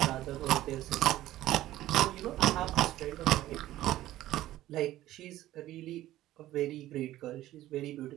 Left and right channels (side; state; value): left; quieter; 14.7 dB